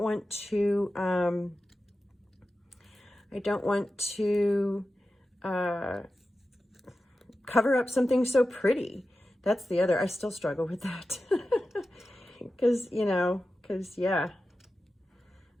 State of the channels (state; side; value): normal; both; correlation 0.93